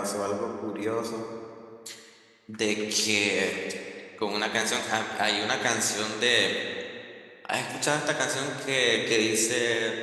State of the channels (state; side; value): identical; both; correlation 1.00